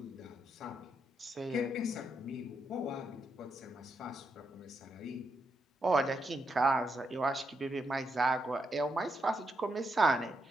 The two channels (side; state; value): both; normal; correlation 0.81